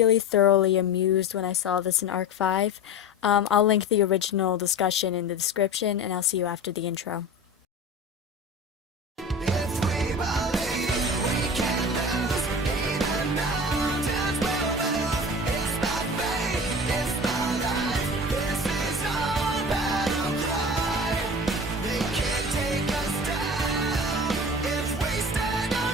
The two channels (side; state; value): both; normal; correlation 0.34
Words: thoroughly amused when I saw this in Arc 5. I'll link the original discussion in the description, and I'll see you after the intro.